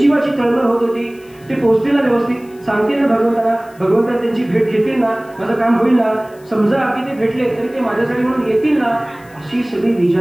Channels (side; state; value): left; noise; hiss, 28 dB below the sound